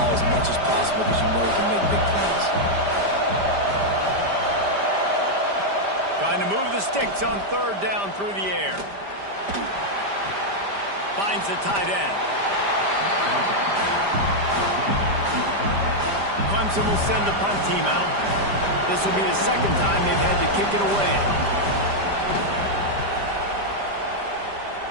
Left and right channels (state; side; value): late; left; 5.0 ms